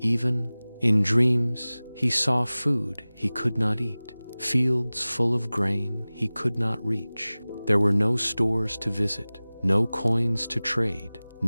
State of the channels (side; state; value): both; inverted; correlation -0.99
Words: in dreams, he saw food he could not eat, fields full of grain he could not reach. There were no stores to visit, no coins to trade,